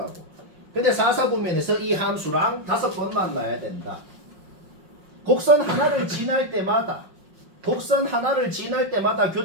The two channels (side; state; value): left; late; 5.5 ms